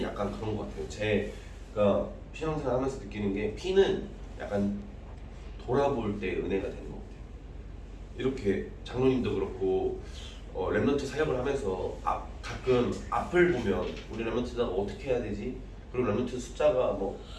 약간 그런 것 같아요. 제가 신앙생활 하면서 느끼는 게 피는 약간 돌아볼 때 은혜가 되는 것 같아요. 이렇게 장로님도 그렇고 렘넌트 사역을 하면서 가끔 앞을 보면 우리 렘넌트가 어떻게 해야 되지? 그리고 렘넌트 숫자가 뭐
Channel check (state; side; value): identical; both; correlation 1.00